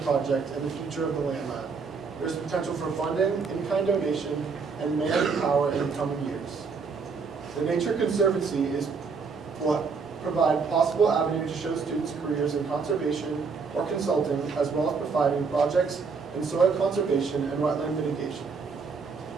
project and the future of the Land Lab. There is potential for funding, in-kind donation, and manpower in the coming years. The Nature Conservancy will provide possible avenues to show students careers in conservation or consulting, as well as providing projects in soil conservation and wetland mitigation.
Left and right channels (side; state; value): left; quieter; 5.1 dB